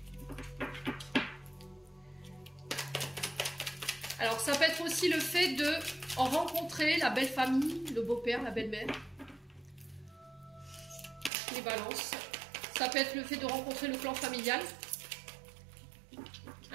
Alors, ça peut être aussi le fait de rencontrer la belle famille, le beau-père, la belle-mère. Les balances. Ça peut être le fait de rencontrer le clan familial.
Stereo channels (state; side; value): drops out; left; at 11.3 s